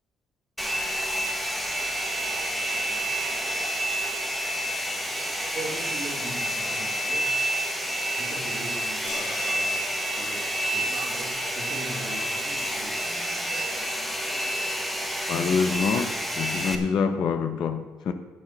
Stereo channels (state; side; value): normal; both; correlation 0.81